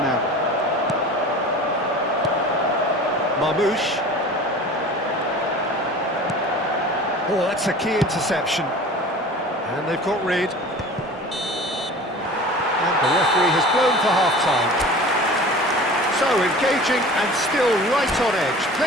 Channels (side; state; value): both; normal; correlation 0.40